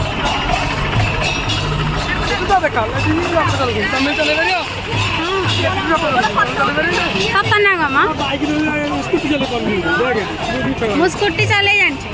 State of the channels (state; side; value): identical; both; correlation 1.00